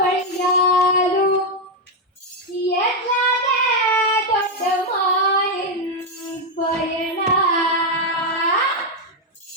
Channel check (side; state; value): both; normal; correlation 0.03